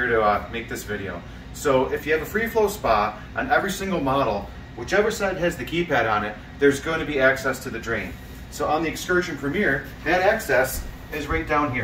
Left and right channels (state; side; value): identical; both; correlation 1.00